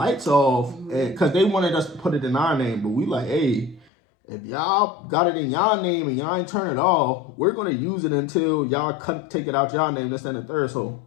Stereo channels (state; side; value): drops out; right; at 3.9 s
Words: off, because they wanted us to put it in our name, but we like, hey, if y'all got it in y'all name and y'all ain't turn it off, we're gonna use it until y'all take it out y'all name, this and the third. So